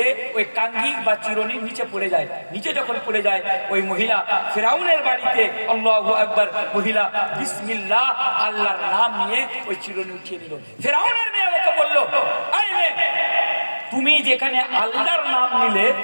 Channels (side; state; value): both; inverted; correlation -1.00